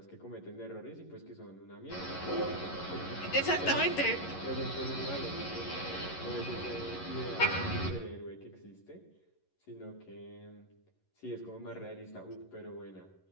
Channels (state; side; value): late; right; 11 ms